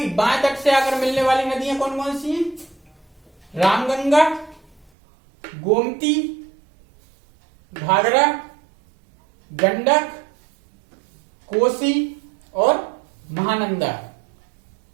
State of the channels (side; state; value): left; drops out; at 4.9 s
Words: बाएं तट से आकर मिलने वाली नदियां कौन कौन सी हैं? रामगंगा, गोमती, घाघरा, गंडक, कोसी और महानंदा।